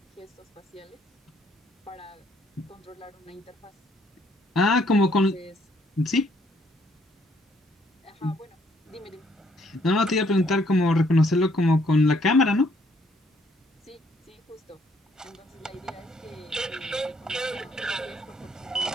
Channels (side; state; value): both; normal; correlation 0.67